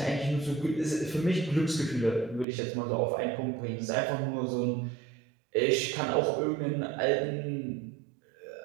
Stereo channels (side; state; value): left; drops out; at 2.5 s